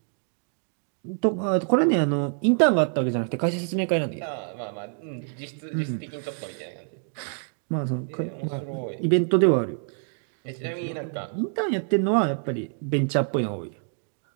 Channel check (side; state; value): left; silent; 61 dB below the other